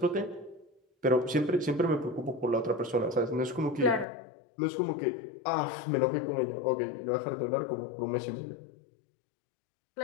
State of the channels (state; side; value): drops out; right; at 4.0 s